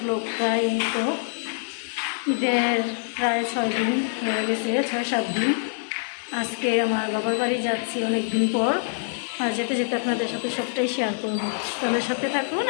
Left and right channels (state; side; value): silent; right; digital silence